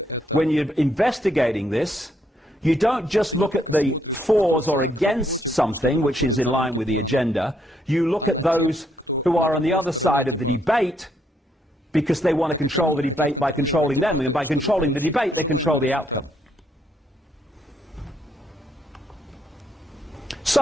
when you're investigating this, you don't just look at the fors or against something which is in line with the agenda. You look at those who are on the other side of the debate because they want to control the debate by controlling them, and by controlling the debate they control the outcome.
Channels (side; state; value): both; normal; correlation 0.74